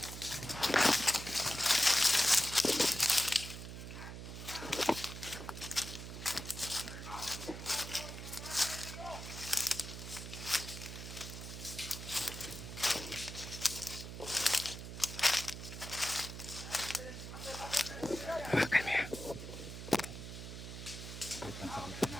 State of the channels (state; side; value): noise; right; hum, 9 dB below the sound